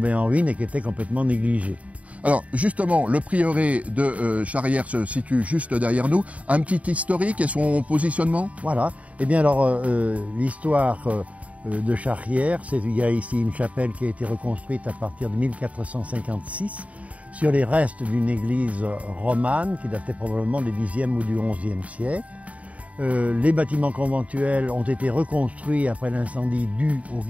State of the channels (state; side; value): late; left; 0.067 ms